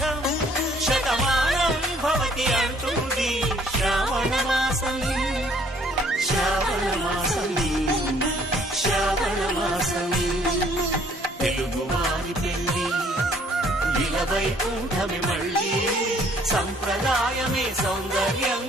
శతమానం భవతి అంటుంది శ్రావణ మాసం, శ్రావణ మాసం, శ్రావణ మాసం. తెలుగువారి పెళ్లి ఇలవై కూటమి మళ్ళీ, సంప్రదాయమే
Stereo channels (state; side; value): normal; both; correlation 0.60